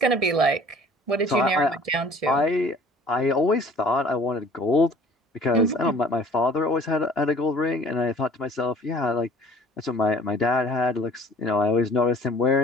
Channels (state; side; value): normal; both; correlation 0.50